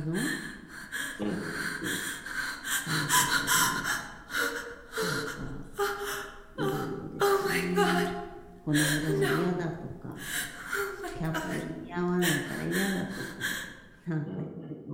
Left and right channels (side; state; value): both; identical; correlation 1.00